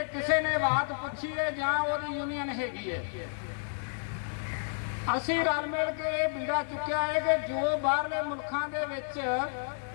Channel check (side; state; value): right; silent; digital silence